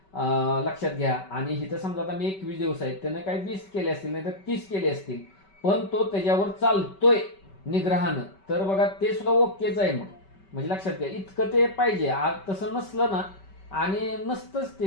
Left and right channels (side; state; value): right; late; 5.2 ms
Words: लक्षात घ्या. आणि इथं समजा आता मी 21 दिवस आहेत, त्यानं काही 20 केले असतील, नाही तर 30 केले असतील, पण तो त्याच्यावर चालतोय निग्रहानं, तर बघा ते सुद्धा ओकेच आहे मग. म्हणजे लक्षात घ्या, इतकं ते पाहिजे. आज तसं नसलं ना, आणि नसतंच